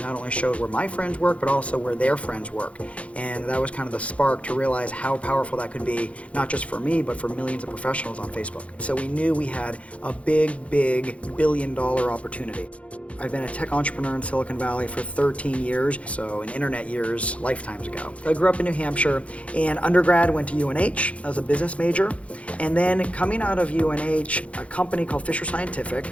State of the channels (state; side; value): late; right; 0.063 ms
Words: not only showed where my friends work, but also where their friends work. And that was kind of the spark to realize how powerful that could be, not just for me, but for millions of professionals on Facebook. So we knew we had a big billion-dollar opportunity. I've been a tech entrepreneur in Silicon Valley for 13 years, so in internet years, lifetimes ago. I grew up in New Hampshire, and undergrad went to UNH. I was a business major, and then coming out of UNH, a company called Fisher Scientific